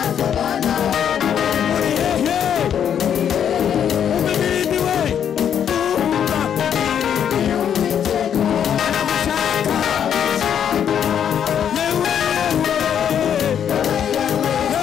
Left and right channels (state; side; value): quieter; right; 8.8 dB